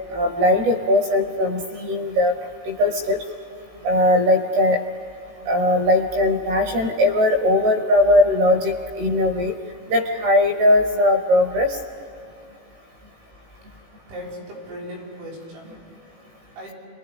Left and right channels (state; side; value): late; left; 18 ms